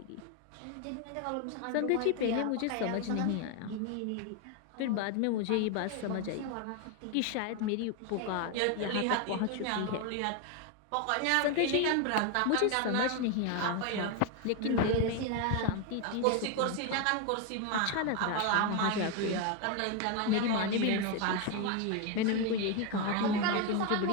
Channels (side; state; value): both; different; correlation 0.01